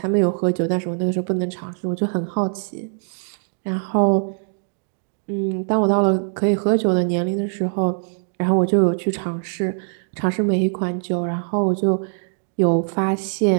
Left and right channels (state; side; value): silent; left; digital silence